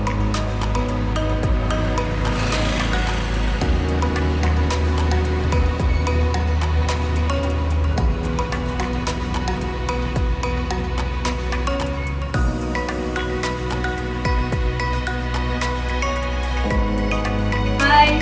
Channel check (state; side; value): identical; both; correlation 1.00